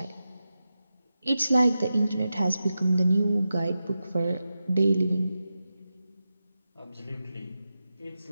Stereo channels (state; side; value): inverted; both; correlation -0.91